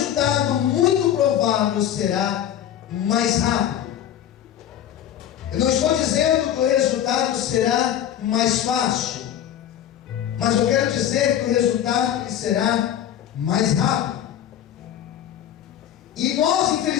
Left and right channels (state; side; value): quieter; right; 10.6 dB